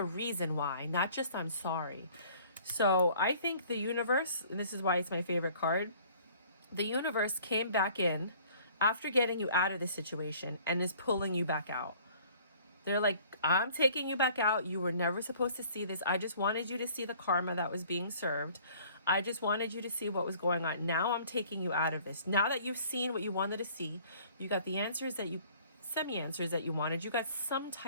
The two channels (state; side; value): inverted; both; correlation -0.54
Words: reason why, not just I'm sorry. So I think the universe, and this is why it's my favorite card, the universe came back in after getting you out of the situation and is pulling you back out. They're like, I'm taking you back out. You were never supposed to see this. I just wanted you to see the karma that was being served. I just wanted you to see what was going on. Now I'm taking you out of this. Now that you've seen what you wanted to see, you got the answers that you, semi-answers that you wanted. You got some